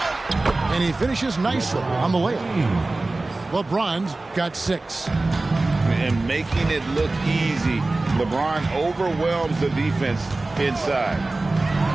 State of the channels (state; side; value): quieter; left; 3.1 dB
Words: And he finishes nicely on the layup. LeBron's got 6. And making it look easy. LeBron overwhelms the defense inside.